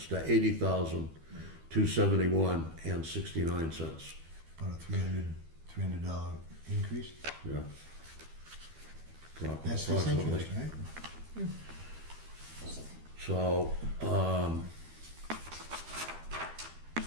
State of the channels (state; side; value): late; left; 12 ms